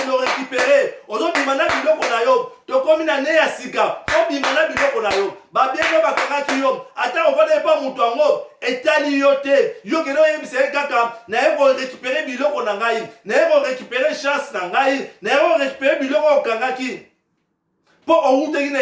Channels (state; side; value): identical; both; correlation 1.00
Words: récupérer ozo bimana biloko na yo to komi na ne ya sika o bimana biloko na yo ba bien no ba kaka yo ata o vade pa mutu ango etali yo te yo keno yebise kaka na e ko récupérer biloko na ngai na e ko récupérer chance na ngai na e ko récupérer biloko kangaki pour au route in